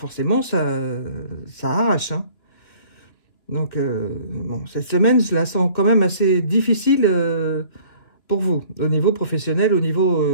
ça arrache. Hein. Donc, bon, cette semaine, je la sens quand même assez difficile pour vous, au niveau professionnel, au niveau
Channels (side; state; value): right; late; 3.1 ms